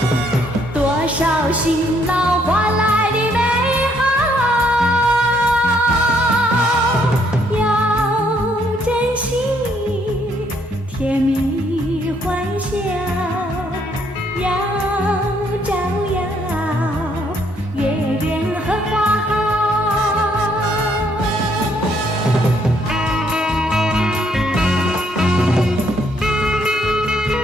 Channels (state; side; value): normal; both; correlation 0.69